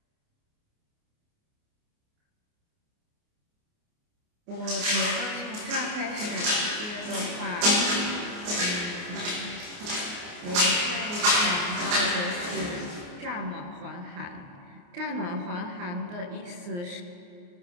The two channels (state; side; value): late; left; 29 ms